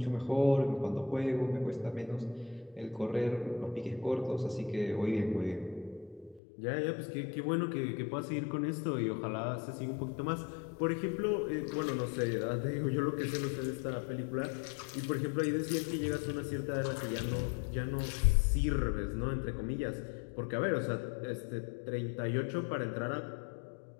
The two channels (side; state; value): right; drops out; at 6.4 s